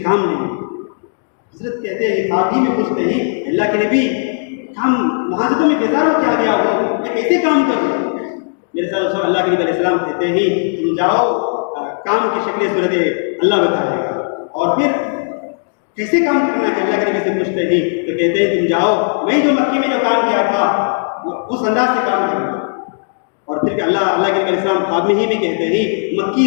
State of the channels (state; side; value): silent; right; digital silence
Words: کام لیں گے. حضرت کہتے ہیں خواب ہی میں پوچھتے ہیں اللہ کے نبی ہم وہاں سے تمہیں بیزار ہو کیا گیا ہو، میں کیسے کام کروں. میرے ساتھ اللہ کے نبی علیہ السلام کہتے ہیں تم جاؤ، کام کی شکل صورت اللہ بتائے گا. اور پھر کیسے کام کرنا ہے اللہ کے نبی سے پوچھتے ہیں تو کہتے ہیں تم جاؤ، میں جو مکی میں جو کام کیا تھا اس انداز سے کام کروں. اور پھر اللہ کے نبی علیہ السلام خواب میں ہی بھی کہتے ہیں